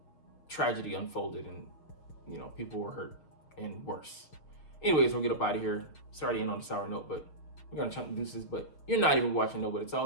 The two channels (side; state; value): right; late; 6.5 ms